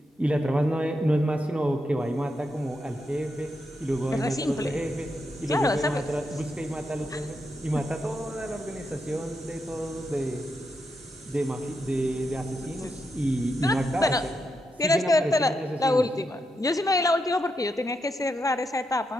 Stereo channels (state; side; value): normal; both; correlation 0.84